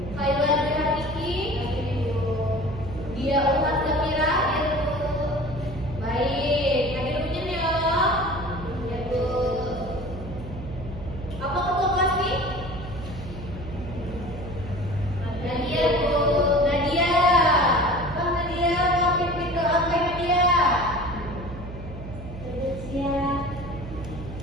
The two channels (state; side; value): noise; right; hum, 10 dB below the sound